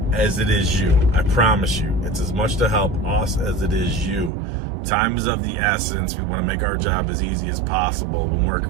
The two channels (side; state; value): left; drops out; at 4.3 s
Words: as it is you. I promise you, it's as much to help us as it is you. Time is of the essence. We want to make our job as easy as possible when